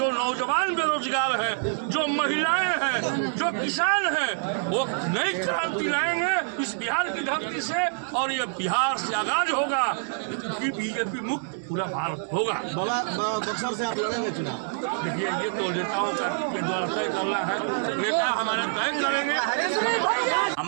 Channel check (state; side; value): silent; left; digital silence